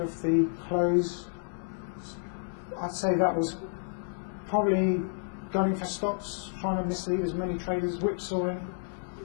the close, I'd say that was probably gunning for stops, trying to mislead as many traders, whipsawing,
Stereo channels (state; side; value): silent; right; digital silence